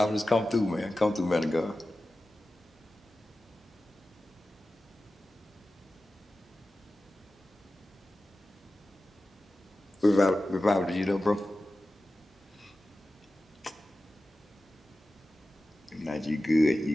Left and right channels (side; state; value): both; normal; correlation 0.95